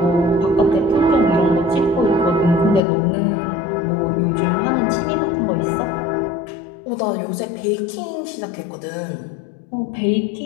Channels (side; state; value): right; drops out; at 2.8 s